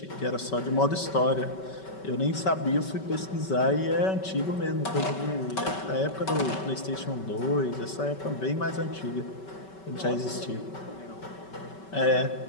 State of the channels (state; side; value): late; right; 5.3 ms